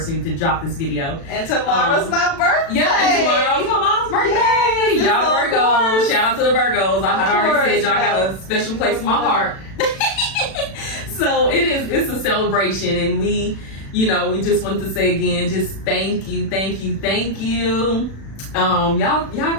to drop this video. And tomorrow's my birthday. Yeah, and tomorrow's my mom's birthday. Yes, y'all Virgos, shout out to the Virgos. I had already said y'all got a special place in my heart. So it's a celebration, and we just want to say again, just thank you. Y'all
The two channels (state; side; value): late; right; 36 ms